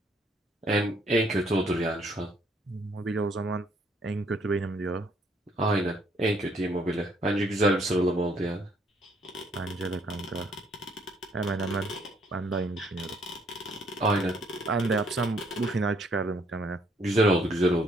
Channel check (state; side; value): normal; both; correlation 0.67